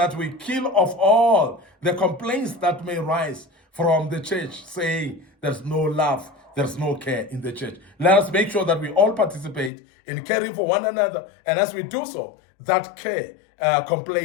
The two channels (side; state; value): right; drops out; at 9.7 s